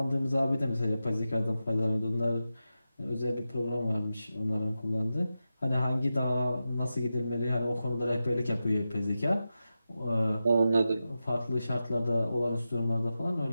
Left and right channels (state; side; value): inverted; both; correlation -0.91